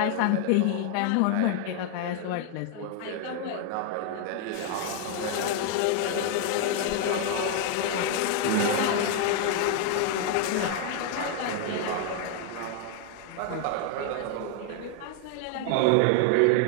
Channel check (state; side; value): different; both; correlation 0.00